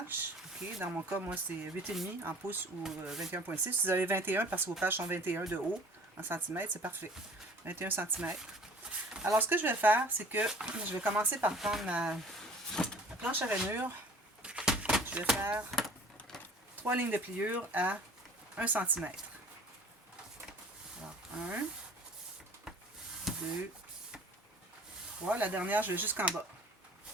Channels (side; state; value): both; normal; correlation 0.48